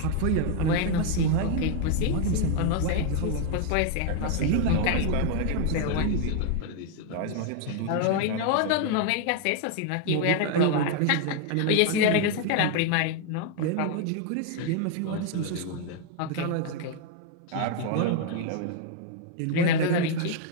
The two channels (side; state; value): both; different; correlation 0.00